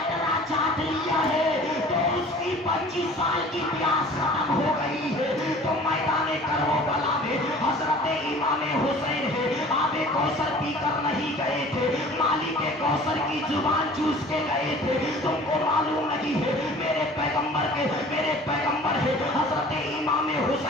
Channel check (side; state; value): both; normal; correlation 0.46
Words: چاٹ لیا ہے تو اس کی 25 سال کی پیاس ختم ہو گئی ہے. تو میدان کربلا میں حضرت امام حسین ہے, آب کوثر پی کر نہیں گئے تھے, مالک کوثر کی زبان چوس کے گئے تھے. تم کو معلوم نہیں ہے میرے پیغمبر ہے حضرت امام